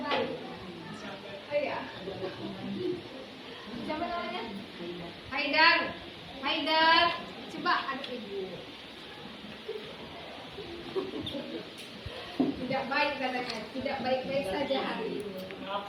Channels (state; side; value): identical; both; correlation 1.00